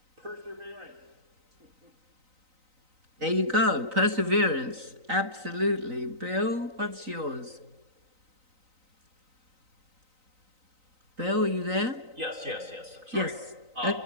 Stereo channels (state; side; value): late; left; 3.9 ms